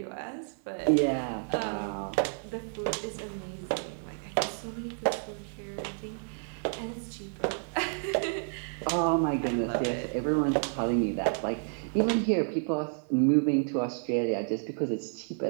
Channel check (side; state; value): left; silent; 58 dB below the other